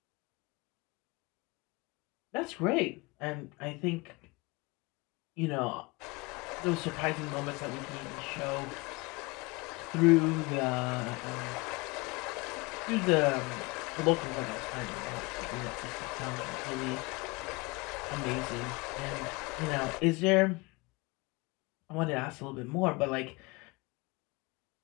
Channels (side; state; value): right; quieter; 25.5 dB